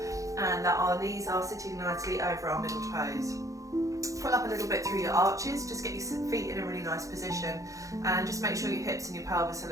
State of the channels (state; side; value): late; left; 0.16 ms